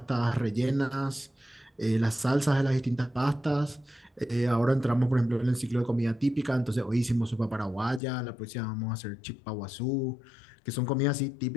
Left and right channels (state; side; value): drops out; right; at 8.0 s